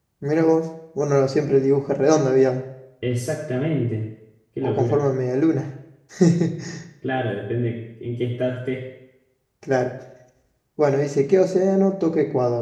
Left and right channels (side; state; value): both; identical; correlation 1.00